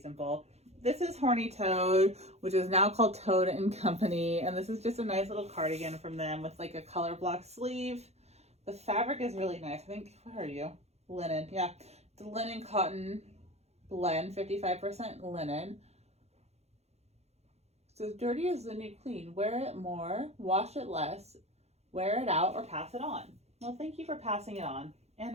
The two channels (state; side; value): late; left; 0.31 ms